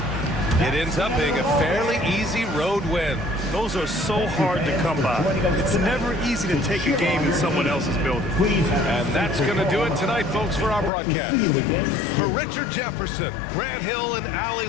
It ends up being a fairly easy road win. Those are so hard to come by. It's never easy to take a game in someone else's building. And that's going to do it tonight, folks, for our broadcast. For Richard Jefferson, Grant Hill, and Allie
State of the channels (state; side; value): drops out; right; at 10.9 s